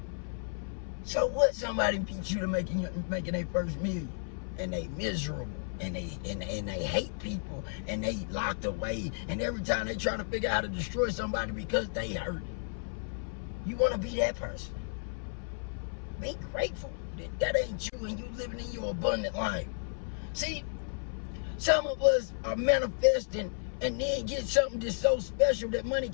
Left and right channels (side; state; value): right; silent; 56 dB below the other